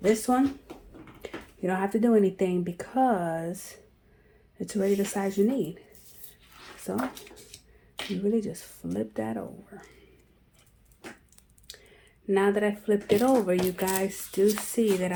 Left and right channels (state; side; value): identical; both; correlation 1.00